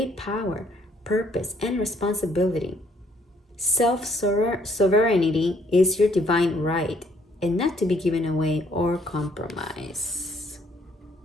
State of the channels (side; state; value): both; normal; correlation 0.66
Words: power, purpose, and responsibility. Self-sovereignty is your divine right and not to be given away or compromised.